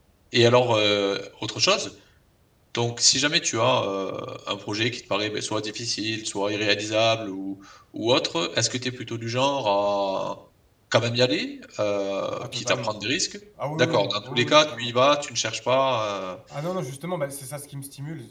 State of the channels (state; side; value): identical; both; correlation 1.00